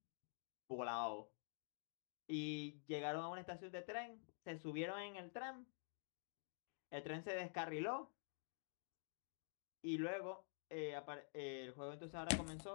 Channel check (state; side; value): silent; right; digital silence